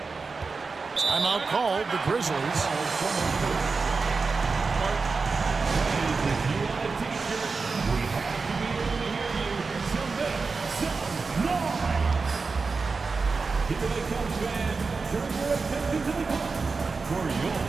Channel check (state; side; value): quieter; left; 4.4 dB